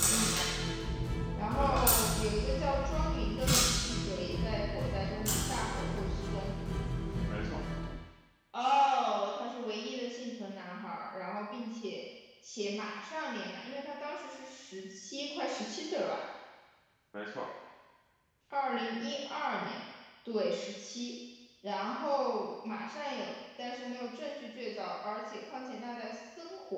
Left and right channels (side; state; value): both; identical; correlation 1.00